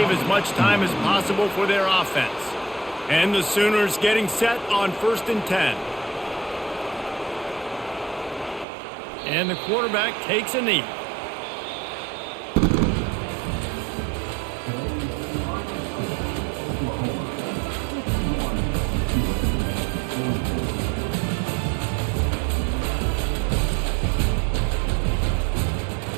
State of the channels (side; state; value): left; drops out; at 8.7 s